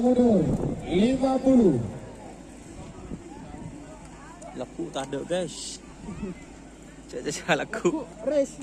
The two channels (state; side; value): identical; both; correlation 1.00